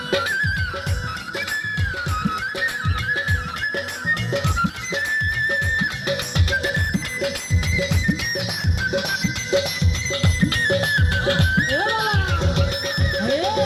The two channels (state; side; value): identical; both; correlation 1.00